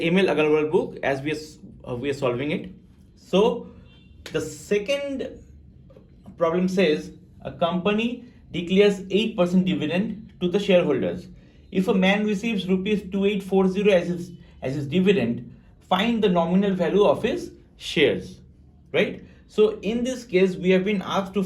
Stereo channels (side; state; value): both; identical; correlation 1.00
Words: book as we are solving it. So the second problem says a company declares 8% dividend to the shareholders. If a man receives rupees 2840 as his dividend, find the nominal value of his shares, right? So in this case, we have been asked to